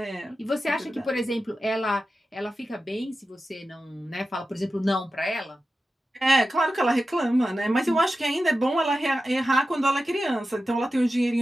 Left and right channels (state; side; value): normal; both; correlation 0.93